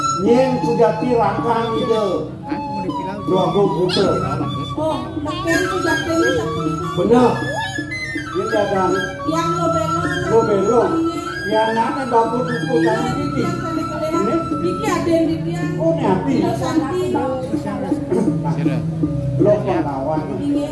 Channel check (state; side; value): identical; both; correlation 1.00